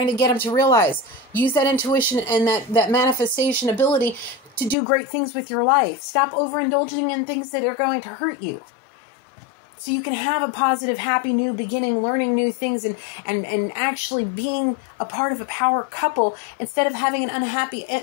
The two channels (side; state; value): right; drops out; at 4.8 s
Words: to get them to realize, use that intuition and that manifestation ability to do great things with your life. Stop overindulging in things that are going to hurt you. so you can have a positive, happy new beginning, learning new things, and actually being a part of a power couple instead of having an unhappy